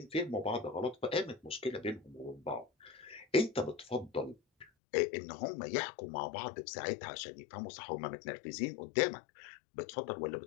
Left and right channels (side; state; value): right; drops out; at 4.7 s